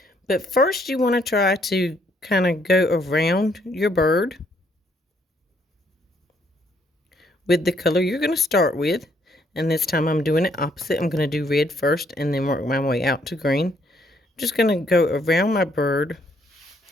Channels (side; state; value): both; normal; correlation 0.69